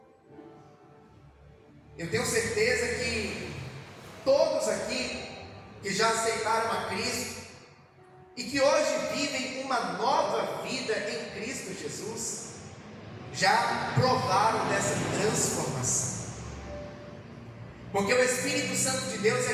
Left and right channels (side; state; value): both; identical; correlation 1.00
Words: Eu tenho certeza que todos aqui que já aceitaram a Cristo e que hoje vivem uma nova vida em Cristo Jesus, já provaram dessa transformação. Porque o Espírito Santo de Deus é